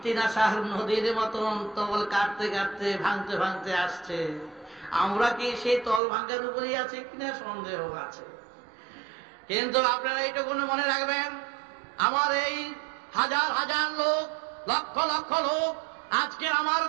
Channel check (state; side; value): drops out; left; at 6.0 s